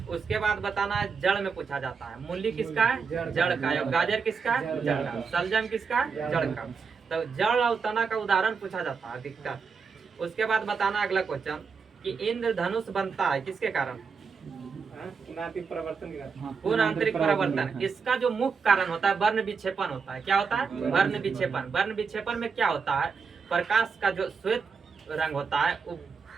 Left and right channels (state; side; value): quieter; left; 5.5 dB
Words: उसके बाद बताना है जड़ में पूछा जाता है। मूली किसका है? जड़ का। और गाजर किसका है? जड़ का। सलजम किसका है? जड़ का। तो जड़ और तना का उदाहरण पूछा जाता है अधिकतर। उसके बाद बताना अगला क्वेश्चन कि इंद्रधनुष बनता है किसके कारण? पूर्ण आंतरिक परिवर्तन। इसका जो मुख्य कारण होता है वर्ण विक्षेपण होता है। क्या होता है? वर्ण विक्षेपण। वर्ण विक्षेपण में क्या होता है? प्रकाश का जो श्वेत रंग होता है वो